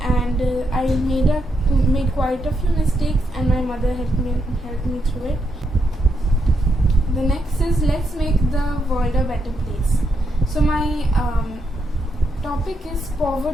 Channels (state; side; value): normal; both; correlation 0.80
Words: I made quite a few mistakes, and my mother helped me through it. The next is let's make the world a better place. So my topic is